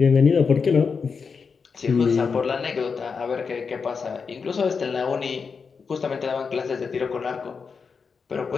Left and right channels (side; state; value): right; quieter; 5.4 dB